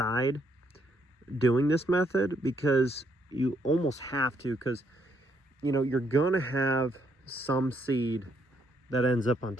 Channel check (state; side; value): normal; both; correlation 0.73